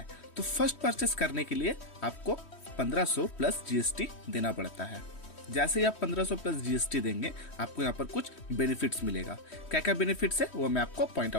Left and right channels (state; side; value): late; right; 3.1 ms